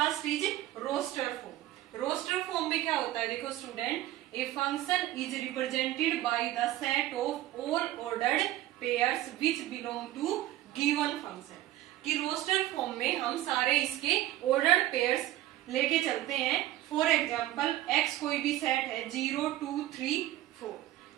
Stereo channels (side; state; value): left; quieter; 14.7 dB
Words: is roster form. Roster form में क्या होता है, देखो student, a function is represented by the set of all ordered pairs which belong to given function. कि रोस्टर फॉर्म में हम सारे इसके ऑर्डर्ड पेयर्स लेके चलते हैं। फॉर एग्जाम्पल x कोई भी सेट है 0, 2, 3, 4